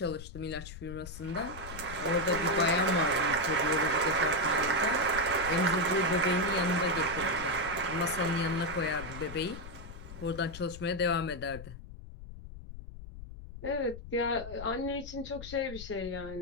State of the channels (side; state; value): left; noise; rumble, 12 dB below the sound